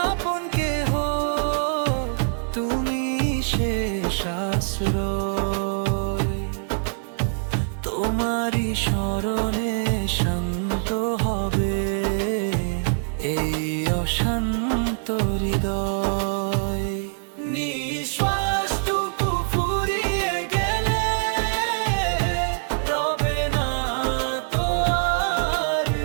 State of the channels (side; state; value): left; silent; digital silence